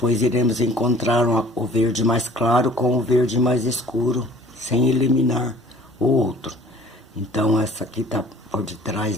iremos encontrar o verde mais claro com o verde mais escuro, sem eliminar o outro. Então essa aqui tá por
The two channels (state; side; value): normal; both; correlation 0.50